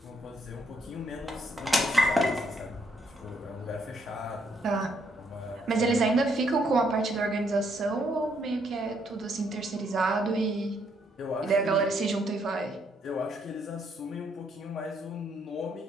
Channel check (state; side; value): normal; both; correlation 0.72